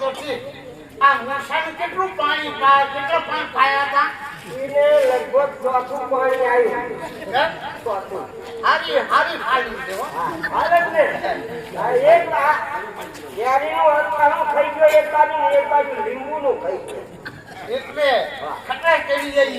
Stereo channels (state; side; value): identical; both; correlation 1.00